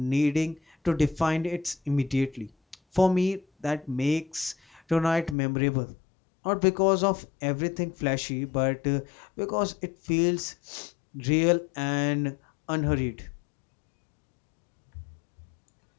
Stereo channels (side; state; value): right; drops out; at 5.4 s